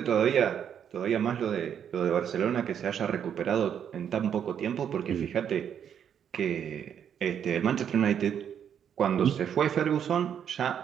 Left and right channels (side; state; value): left; quieter; 8.6 dB